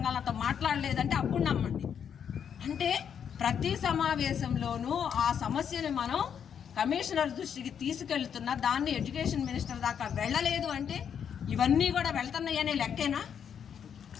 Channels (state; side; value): quieter; right; 8.0 dB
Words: మాట్లాడలేదంటే అప్పుడు నమ్మండి. అంటే ప్రతి సమావేశంలోనూ ఆ సమస్యని మనం కమిషనర్ దృష్టికి తీసుకెళ్తున్నా దాన్ని ఎడ్యుకేషన్ మినిస్టర్ దాకా వెళ్ళలేదు అంటే ఇవన్నీ కూడా వెళ్తున్నాయనే లెక్కేనా?